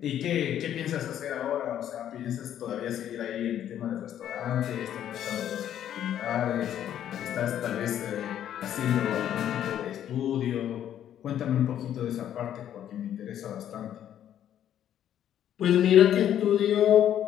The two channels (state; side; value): quieter; right; 10.6 dB